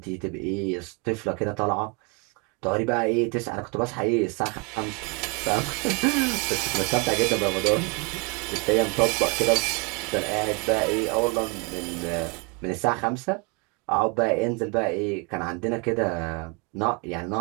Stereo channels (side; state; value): left; quieter; 31.2 dB